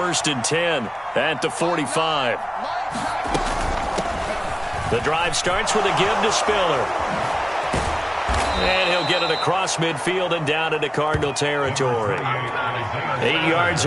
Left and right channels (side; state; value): both; identical; correlation 1.00